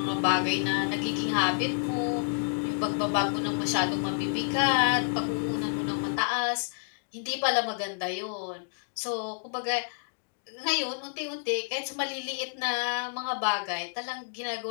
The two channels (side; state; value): right; silent; digital silence